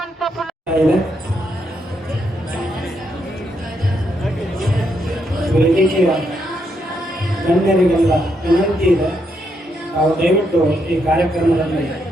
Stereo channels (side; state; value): both; normal; correlation 0.78